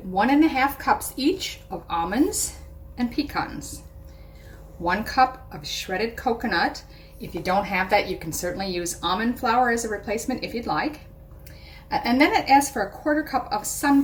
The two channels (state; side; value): identical; both; correlation 1.00